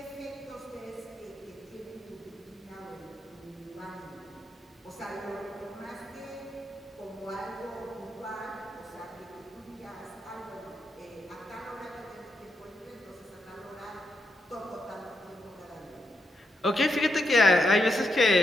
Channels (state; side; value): normal; both; correlation 0.82